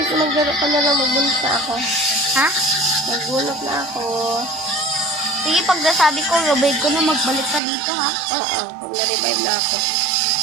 ka na lang, magbunot na ako. Ha? Magbunot na ako. Sige, pag nasabi ko, revive ko na magbalik ka dito, ha? Oo, pag na-revive na ako.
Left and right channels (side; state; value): left; drops out; at 7.6 s